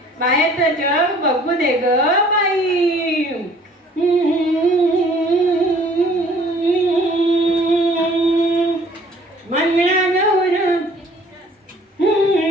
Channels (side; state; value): both; normal; correlation 0.55